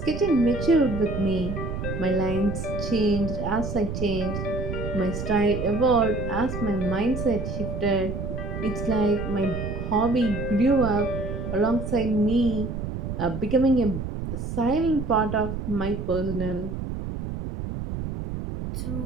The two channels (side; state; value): right; noise; rumble, 5 dB below the sound